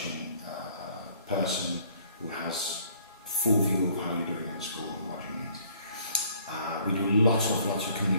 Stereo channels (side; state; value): both; inverted; correlation -0.59